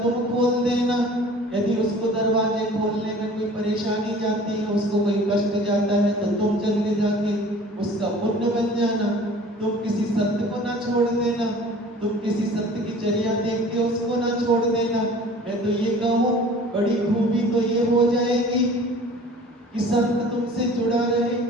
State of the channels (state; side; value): normal; both; correlation 0.46